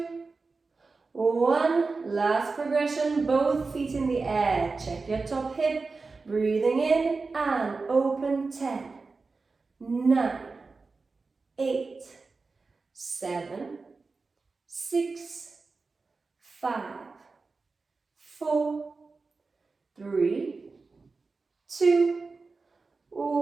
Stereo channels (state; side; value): quieter; left; 4.1 dB